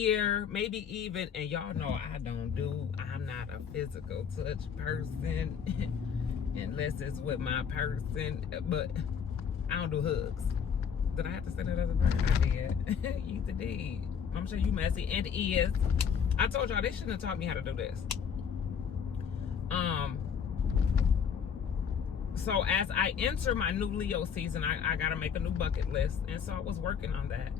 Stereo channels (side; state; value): right; quieter; 7.2 dB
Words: maybe even, and y'all know I'm not a physical touch person unless it's with my person, but I don't do hugs. Did I have to say that other word? I did. You did. I'm sure you messy and is. I told y'all they shouldn't have taught me how to do this. So as I enter my new Leo season, I gotta make a new bucket list. And so I was working on that.